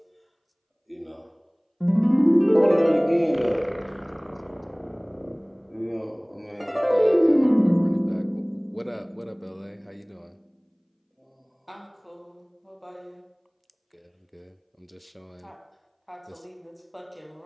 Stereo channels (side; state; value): both; identical; correlation 1.00